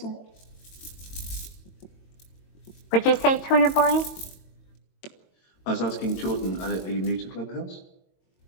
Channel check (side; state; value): right; late; 22 ms